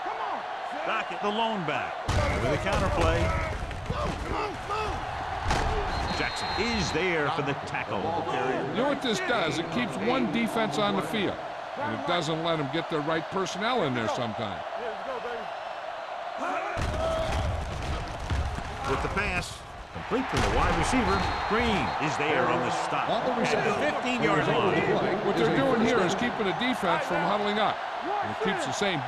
Come on. Docket, the lone back. With a counter play. Jackson is there for the tackle. You know what this does? It keeps one defense on the field, and it doesn't let them get the right personnel in there sometimes. Let's go, baby. With the pass, complete to the wide receiver. Green is there on the stop at the 15-yard line. What they're doing here is keeping the defense from huddling up, and it keeps the same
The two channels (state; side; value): identical; both; correlation 1.00